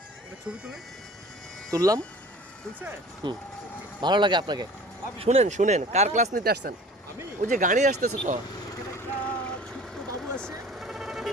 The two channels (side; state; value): both; normal; correlation 0.45